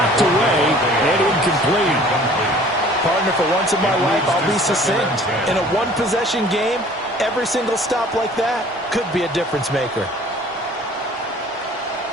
away and incomplete. Partner, for once in my life, I'll be succinct. In a one-possession game, every single stop like that could be a difference maker.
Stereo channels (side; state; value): both; normal; correlation 0.51